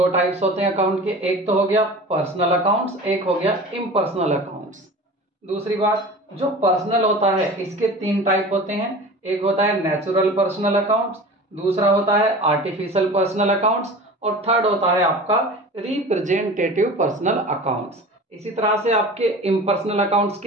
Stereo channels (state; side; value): normal; both; correlation 0.37